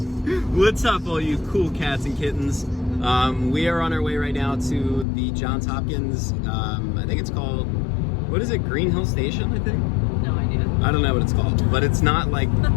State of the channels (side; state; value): right; drops out; at 5.1 s